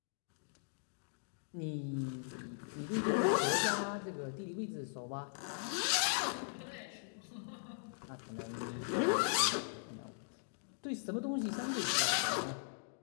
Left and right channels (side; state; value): right; silent; digital silence